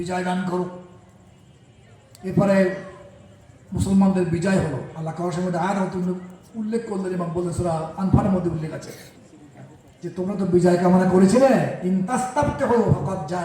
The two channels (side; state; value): both; identical; correlation 1.00